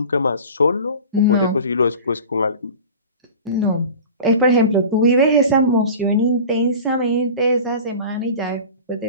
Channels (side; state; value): both; inverted; correlation -0.37